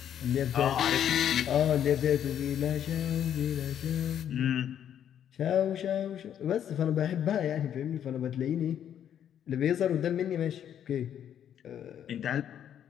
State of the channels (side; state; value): right; quieter; 9.6 dB